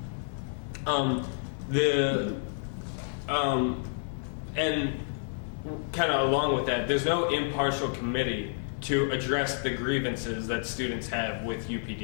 And kind of along with that, there's no impartial committee to address the grievances that students have with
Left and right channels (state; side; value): silent; right; digital silence